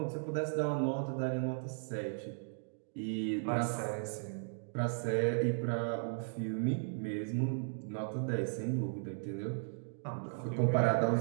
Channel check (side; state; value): left; silent; digital silence